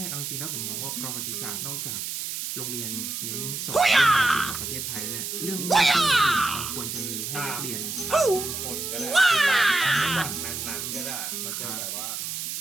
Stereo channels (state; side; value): noise; right; hiss, 4 dB below the sound